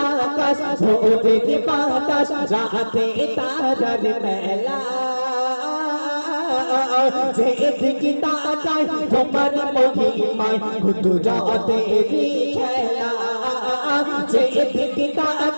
আকাশ ভোরের বাতাস রাতে তারার মেলা যেদিকে তাকাই তোমার মহিমায় কুদরতের খেলা যেদিকে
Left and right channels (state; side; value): inverted; both; correlation -1.00